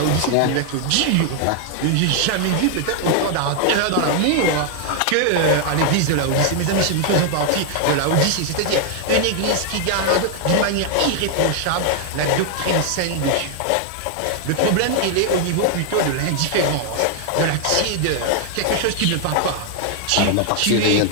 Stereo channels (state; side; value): different; both; correlation 0.00